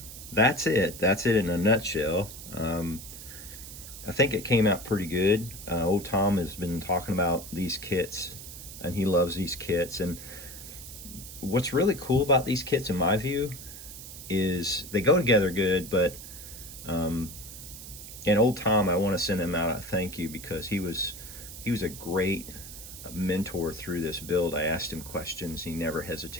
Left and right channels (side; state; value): right; noise; hiss, 13 dB below the sound